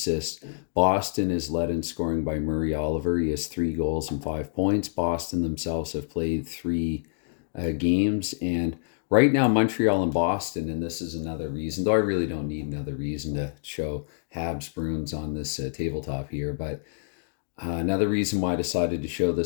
Boston is led in scoring by Murray Oliver. He has 3 goals and 5 points. Boston themselves have played 3 games. And right now, Montreal and Boston, and this is another reason, though I really don't need another reason to show Habs Bruins on this tabletop here, but another reason why I decided to show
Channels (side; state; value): right; silent; digital silence